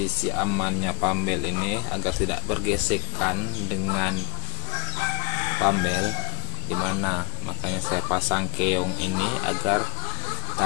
amannya pambel ini agar tidak bergesekan dengan pambel, dimana makanya saya pasang keong ini agar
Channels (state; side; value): quieter; right; 30.7 dB